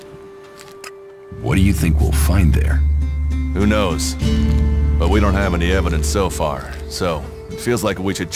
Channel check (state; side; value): identical; both; correlation 1.00